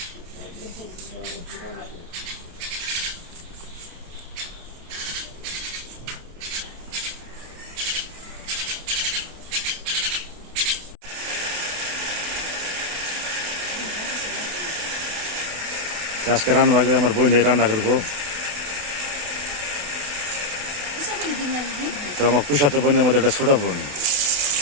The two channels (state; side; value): late; left; 28 ms